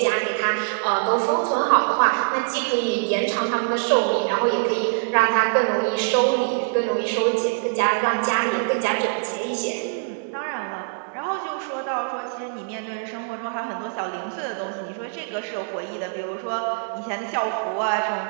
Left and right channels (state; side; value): silent; left; digital silence